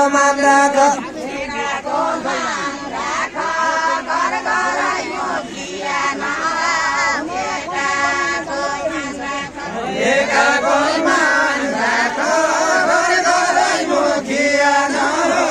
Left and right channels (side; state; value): both; identical; correlation 1.00